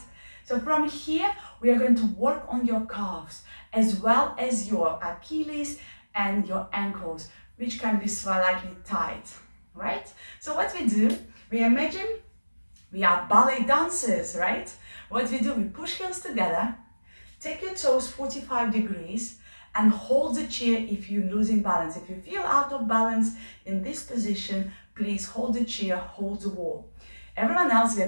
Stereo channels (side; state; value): both; inverted; correlation -1.00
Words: So from here, we are going to work on your calves, as well as your Achilles and your ankles, which can be slightly tight, right? So what we do, we imagine we are ballet dancers, right? What we do, we push heels together, take your toes 45 degrees, and hold the chair if you're losing balance. If you feel out of balance in this position, please hold the chair, hold the wall. Everyone else, we